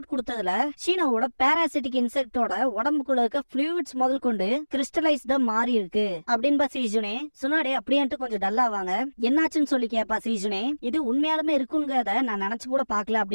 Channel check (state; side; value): inverted; both; correlation -1.00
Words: கொடுத்ததுல ஷீனோவோட பாராசிட்டிக் இன்செக்டோட உடம்புக்குள்ள இருக்க ஃப்ளூயிட்ஸ் முதல் கொண்டு கிறிஸ்டலைஸ்டா மாறி இருக்கு அப்படின்னு சீஜுனே சுனாடே அப்படின்ட்டு கொஞ்சம் டல்லாவாங்க. என்னாச்சுன்னு சொல்லி கேப்பா சீஜுனே. இது உண்மையாலுமே இருக்குங்கிறத நான் நினைச்சு கூட பாக்கல